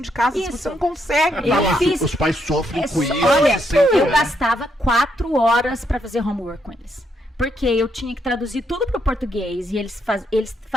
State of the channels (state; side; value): normal; both; correlation 0.76